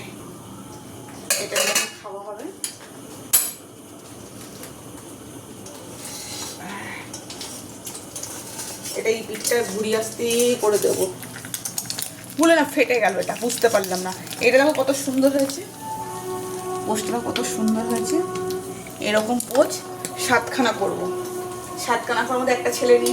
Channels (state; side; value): identical; both; correlation 1.00